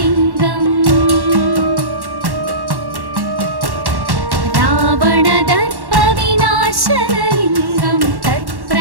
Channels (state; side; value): late; left; 1.1 ms